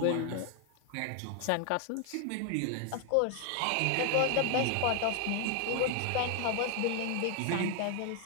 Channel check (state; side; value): different; both; correlation 0.00